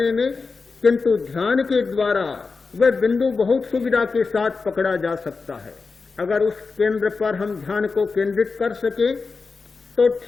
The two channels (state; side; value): quieter; right; 4.4 dB